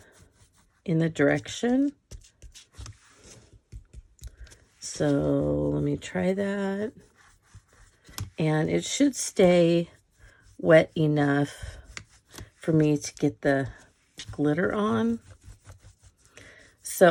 in the direction. So let me try that. And it should stay wet enough for me to get the glitter on.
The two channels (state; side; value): identical; both; correlation 1.00